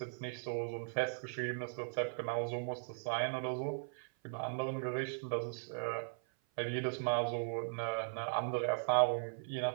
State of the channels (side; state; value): left; silent; 52 dB below the other